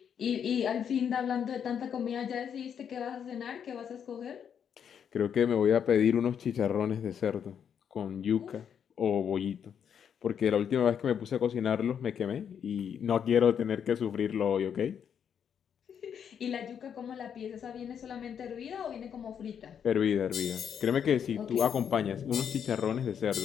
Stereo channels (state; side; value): quieter; right; 8.0 dB